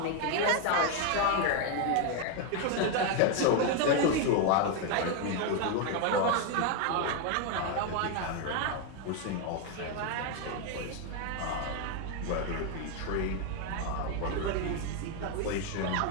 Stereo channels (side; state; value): both; different; correlation 0.01